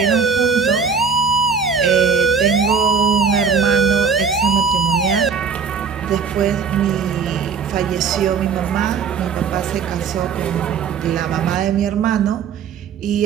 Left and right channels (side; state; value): left; quieter; 5.9 dB